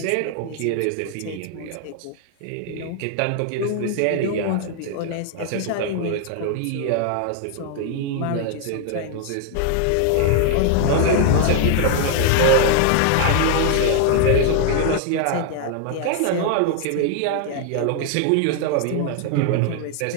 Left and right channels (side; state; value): both; different; correlation 0.00